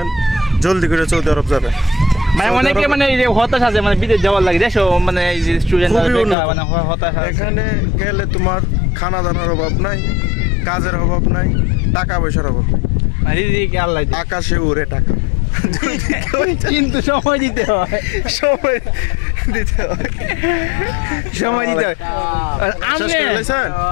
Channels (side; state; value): right; drops out; at 6.4 s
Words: জলদি করে সৌদি আরব যাবে। মানে অনেকে মানে এই যে হতাশ আছে, মানে বিদেশ যাওয়ার লাগে দেশো, মানে এই যে স্টুডেন্ট মানে হতাশ আছে। এখানে গেলে তোমার খানা দানার অভাব নাই, কাজের অভাব নাই, টাকা পয়সার অভাব নাই, আল্লাহ আকাশে উড়ে টাকা। কিন্তু সময় দিতে হয়, সময় দিতে হয়, সময় দিতে হয়।